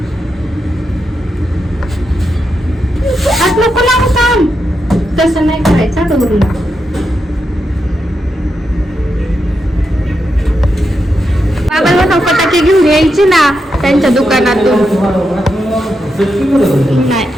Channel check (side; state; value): both; normal; correlation 0.85